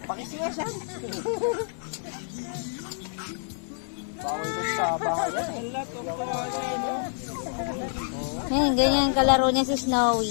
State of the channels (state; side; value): silent; right; digital silence